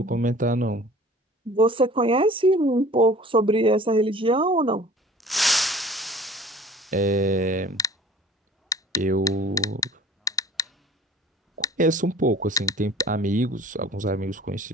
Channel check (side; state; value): both; normal; correlation 0.46